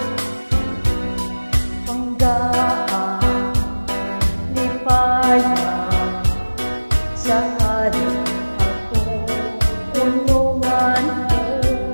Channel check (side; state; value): both; inverted; correlation -1.00